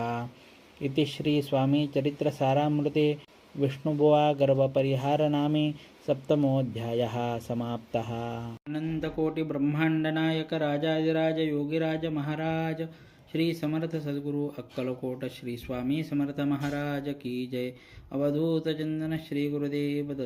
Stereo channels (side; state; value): both; identical; correlation 1.00